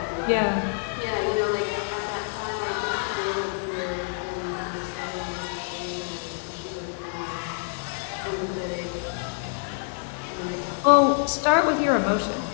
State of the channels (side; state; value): right; silent; digital silence